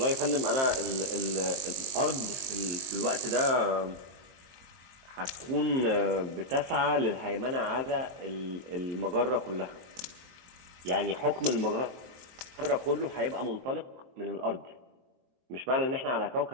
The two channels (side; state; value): left; late; 23 ms